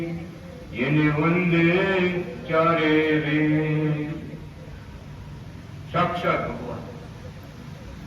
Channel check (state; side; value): identical; both; correlation 1.00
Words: જેને વંદે ચારે વેદ. સાક્ષાત ભગવાન